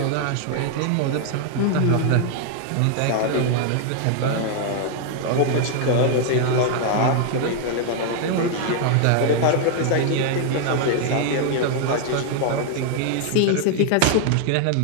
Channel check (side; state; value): both; different; correlation 0.00